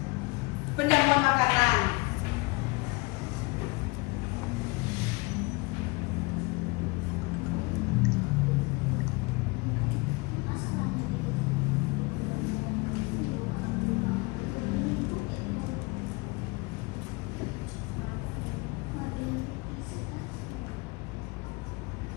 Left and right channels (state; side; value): quieter; right; 25.9 dB